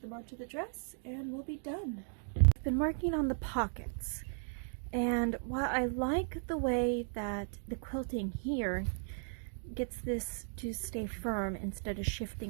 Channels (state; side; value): silent; left; digital silence